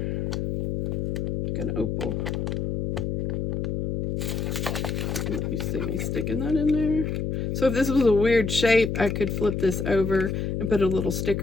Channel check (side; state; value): left; noise; hum, 1 dB below the sound